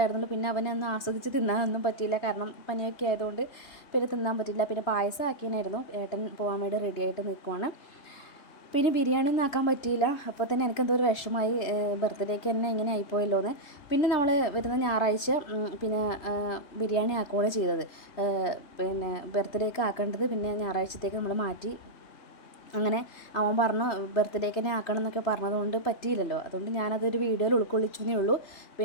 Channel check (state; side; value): late; right; 3.0 ms